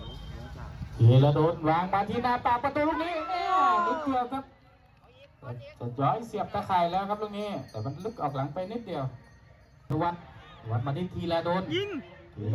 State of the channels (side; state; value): both; identical; correlation 1.00